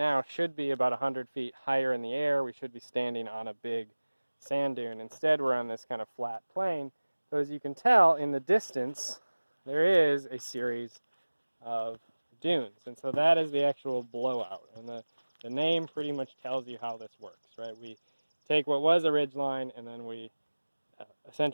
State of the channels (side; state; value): both; inverted; correlation -1.00